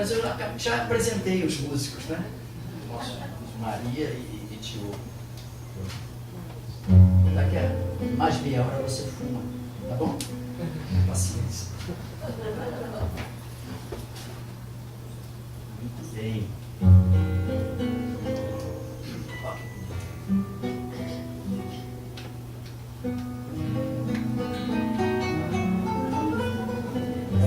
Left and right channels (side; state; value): both; identical; correlation 1.00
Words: eu já apresentei os músicos, né? Nossa, Maria e Tio. Daqui a mais meia hora você fuma, tá bom? Paciência. Muito bem.